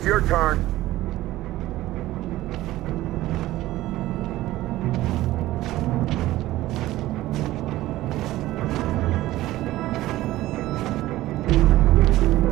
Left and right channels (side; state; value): left; quieter; 16.1 dB